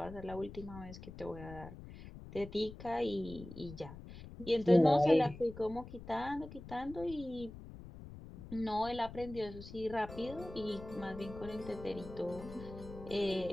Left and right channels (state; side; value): noise; left; rumble, 14 dB below the sound